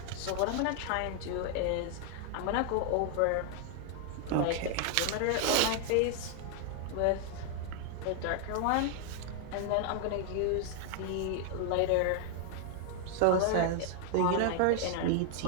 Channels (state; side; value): different; both; correlation 0.00